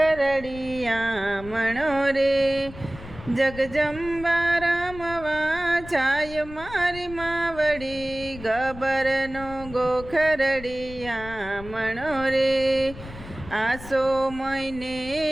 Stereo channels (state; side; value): noise; left; rumble, 15 dB below the sound